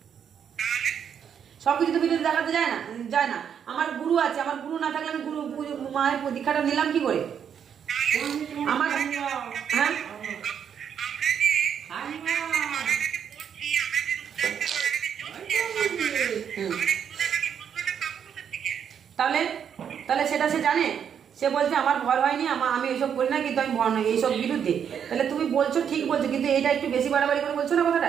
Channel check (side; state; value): left; quieter; 8.1 dB